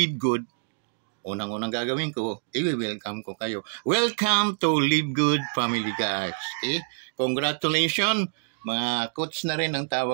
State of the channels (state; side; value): silent; left; digital silence